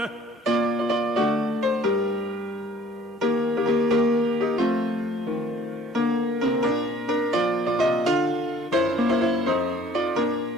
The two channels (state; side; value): normal; both; correlation 0.56